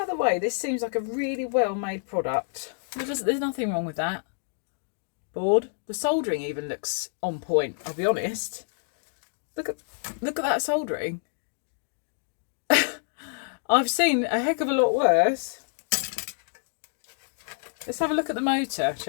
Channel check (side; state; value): right; silent; digital silence